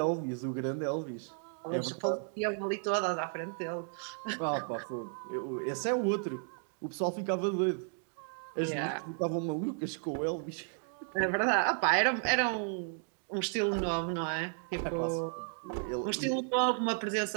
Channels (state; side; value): silent; left; 55 dB below the other